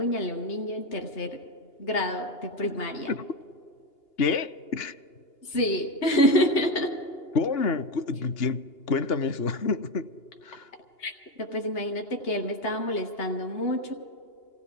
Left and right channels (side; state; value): right; late; 2.8 ms